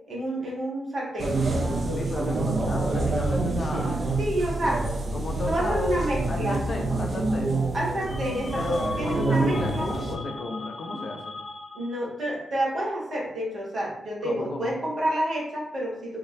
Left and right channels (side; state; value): both; normal; correlation 0.83